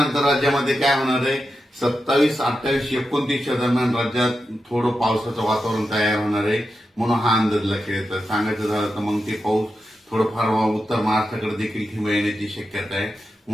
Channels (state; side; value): normal; both; correlation 0.89